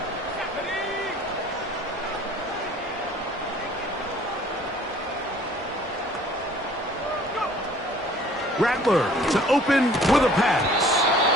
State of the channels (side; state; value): both; normal; correlation 0.53